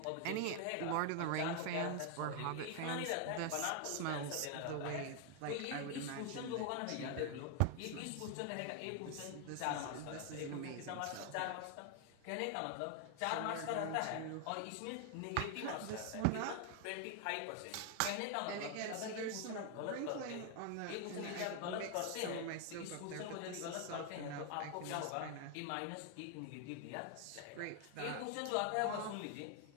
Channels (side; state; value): both; different; correlation 0.00